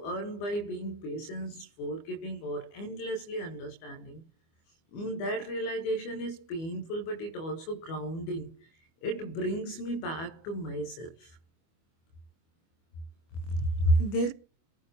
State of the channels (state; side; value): late; right; 25 ms